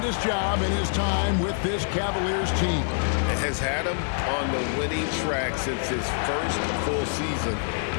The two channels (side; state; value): right; silent; digital silence